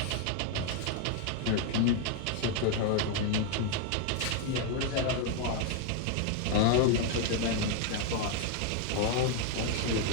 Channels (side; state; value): both; different; correlation 0.01